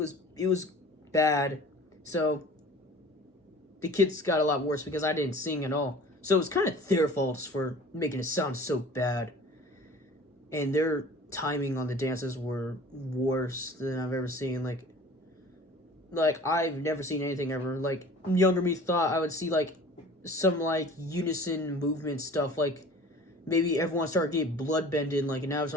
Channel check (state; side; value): normal; both; correlation 0.45